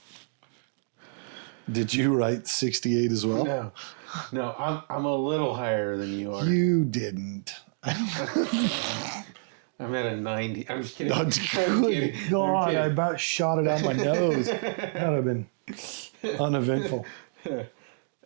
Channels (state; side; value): silent; left; digital silence